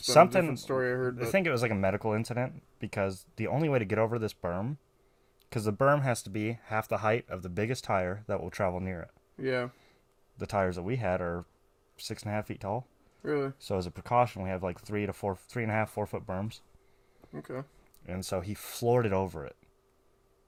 been a something, different story I heard. I think it was like a medical incident because the only way to get over this berm, because the berm has to be half the height of the biggest tire that will travel near it. Yeah. The tires that we had are 6.5 feet tall. Really? So as a precaution, we have like 3.5, 4 foot berms. Okay. And so he floored it over it.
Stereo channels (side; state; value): both; identical; correlation 1.00